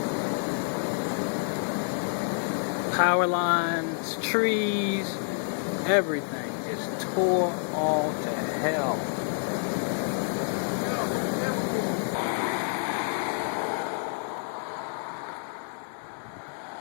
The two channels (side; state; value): right; silent; 59 dB below the other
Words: Power lines, trees, everything just tore all to hell.